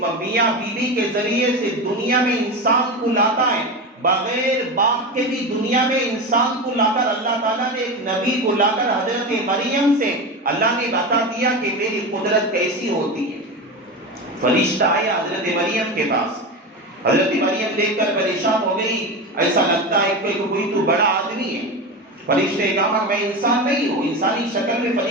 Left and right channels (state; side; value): normal; both; correlation 0.22